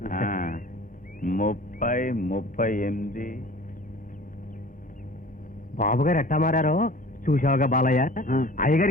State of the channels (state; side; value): normal; both; correlation 0.44